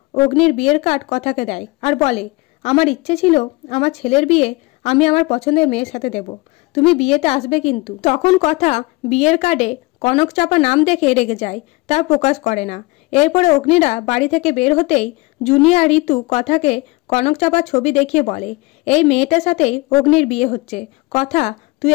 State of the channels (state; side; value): quieter; right; 23.6 dB